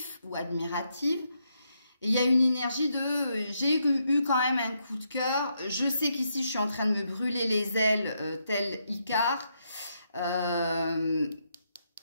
ou admirative. Et il y a une énergie de... j'ai eu quand même un coup de cœur. Je sais qu'ici, je suis en train de me brûler les ailes tel Icare.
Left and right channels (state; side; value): inverted; both; correlation -0.79